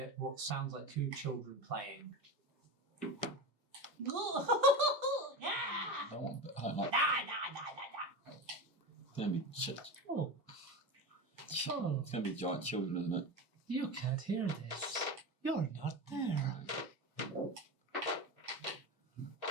what sounds like 2 children playing. I don't want to. I don't like. It's gonna be shit. Oh. Oh, It's gonna be giant children, isn't it? you can't hear this. You're not there.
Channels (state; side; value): normal; both; correlation 0.24